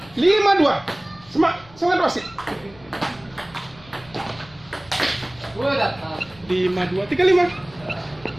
Lima dua. Semangat wasit. Dua dah. Lima dua. Tiga lima.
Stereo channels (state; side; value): noise; left; rumble, 24 dB below the sound